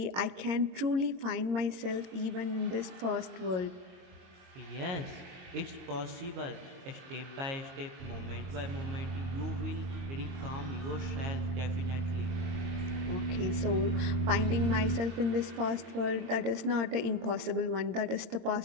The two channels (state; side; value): late; left; 22 ms